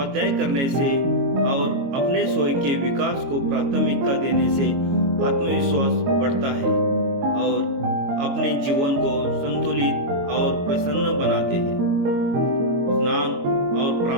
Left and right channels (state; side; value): late; left; 22 ms